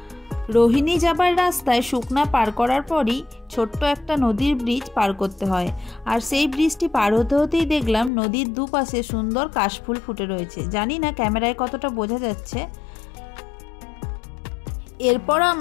রোহিণী যাবার রাস্তায় শুকনা পার করার পরই ছোট্ট একটা নদীর ব্রিজ পার করতে হয়, আর সেই ব্রিজটি পার হতে হতেই দেখলাম নদীর দুপাশে সুন্দর কাশফুল ফুটে রয়েছে। জানি না ক্যামেরায় কতটা বোঝা যাচ্ছে। এরপর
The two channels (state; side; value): drops out; right; at 8.1 s